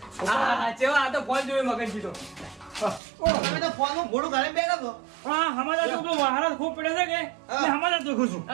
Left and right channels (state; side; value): drops out; left; at 3.0 s